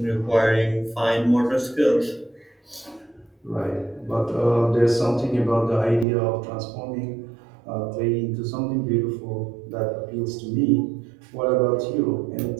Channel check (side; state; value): left; drops out; at 6.1 s